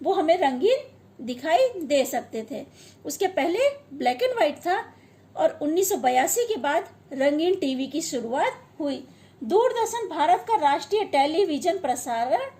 वो हमें रंगीन दिखाई दे सकते थे। उसके पहले ब्लैक एंड व्हाइट था और 1982 के बाद रंगीन टीवी की शुरुआत हुई। दूरदर्शन भारत का राष्ट्रीय टेलीविजन प्रसारण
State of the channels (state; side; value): identical; both; correlation 1.00